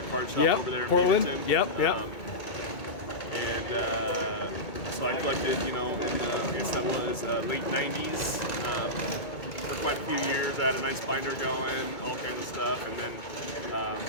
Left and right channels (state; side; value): late; right; 2.2 ms